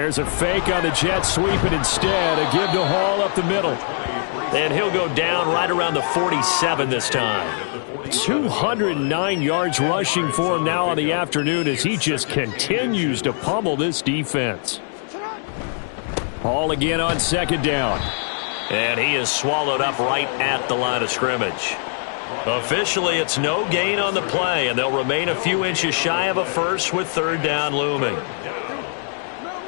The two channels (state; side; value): silent; right; 64 dB below the other